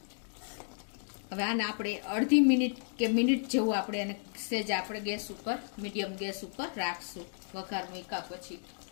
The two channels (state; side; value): silent; right; 56 dB below the other